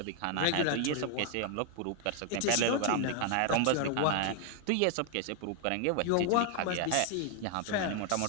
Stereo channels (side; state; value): both; different; correlation 0.00